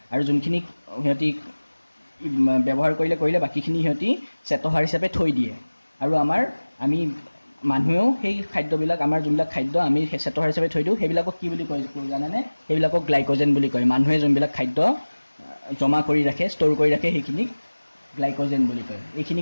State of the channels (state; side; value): inverted; both; correlation -1.00